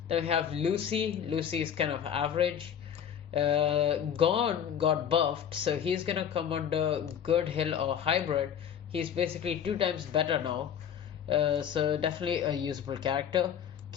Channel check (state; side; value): quieter; right; 8.9 dB